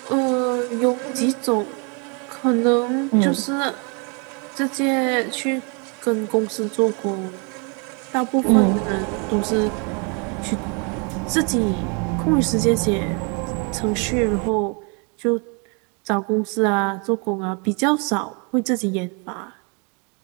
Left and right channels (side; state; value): left; quieter; 35.1 dB